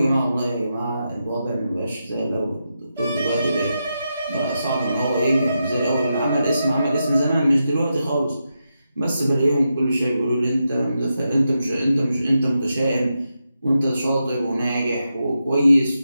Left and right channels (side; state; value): both; inverted; correlation -0.87